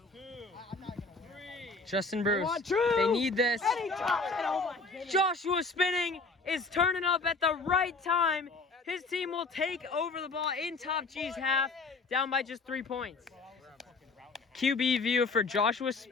2, 3. Justin Bruce. want Drew. They need this. And he drops it. Oh my goodness. Joshua spinning is turning up at the right time. His team will take over the ball in Top G's half, down by just 3 points. QB view for Joshua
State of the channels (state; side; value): quieter; right; 3.8 dB